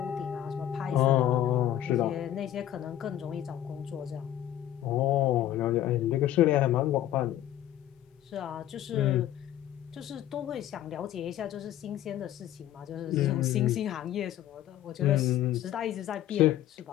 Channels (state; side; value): quieter; right; 12.2 dB